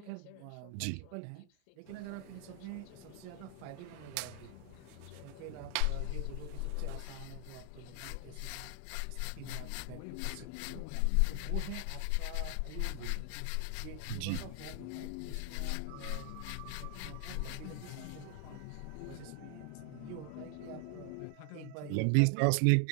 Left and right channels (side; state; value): both; different; correlation 0.00